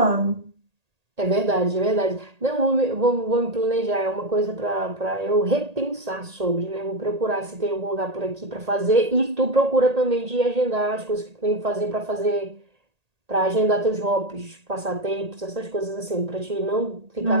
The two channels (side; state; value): left; late; 1.8 ms